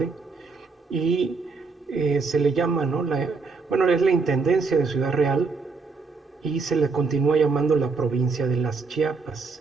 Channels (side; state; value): left; quieter; 4.5 dB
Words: y se le llama, ¿no? Bueno, es la intendencia de Ciudad Real, y se le continúa llamando la provincia de las